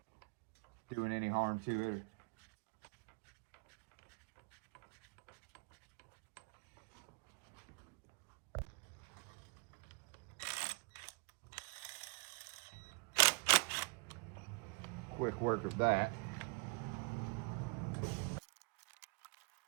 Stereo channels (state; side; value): quieter; left; 30.5 dB